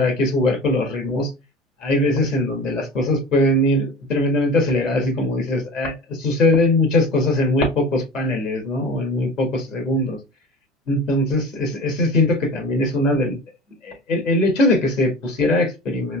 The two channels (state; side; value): normal; both; correlation 0.36